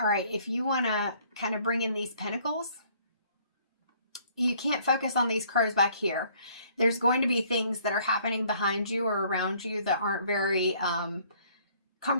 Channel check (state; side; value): inverted; both; correlation -0.60